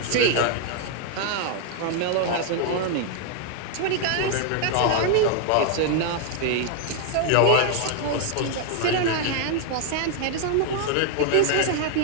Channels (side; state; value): both; different; correlation 0.00